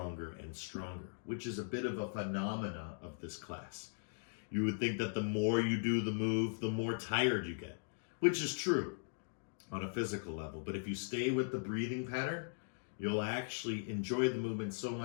and stronger, which is a bit of a phenomena of this class. You would think that the more you do the move, the more tired you get, which is true on a physical level. But if you stay with the breathing pattern, you'll actually enjoy the movement so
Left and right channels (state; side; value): silent; right; digital silence